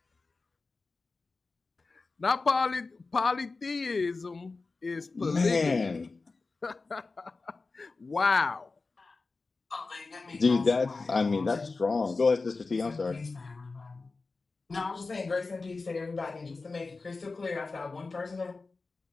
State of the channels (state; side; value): quieter; right; 3.9 dB